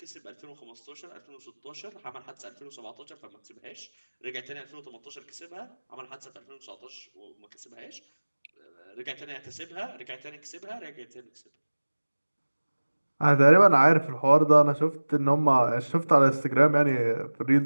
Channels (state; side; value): inverted; both; correlation -1.00